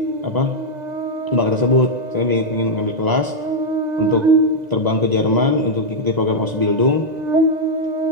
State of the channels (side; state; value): left; late; 1.9 ms